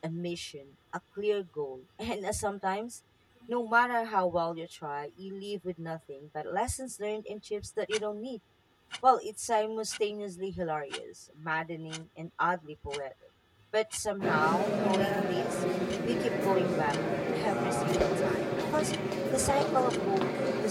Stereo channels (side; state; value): both; identical; correlation 1.00